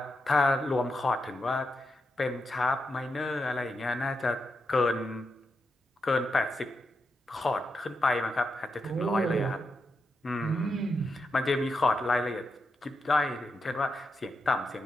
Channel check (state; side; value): normal; both; correlation 0.85